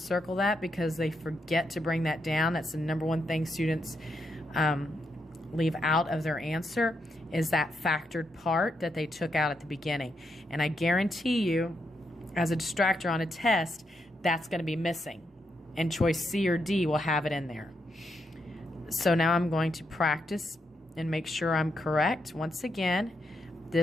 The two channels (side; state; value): both; normal; correlation 0.81